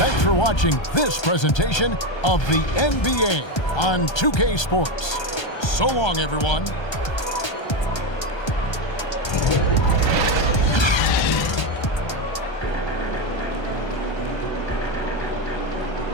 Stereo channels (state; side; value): late; right; 1.3 ms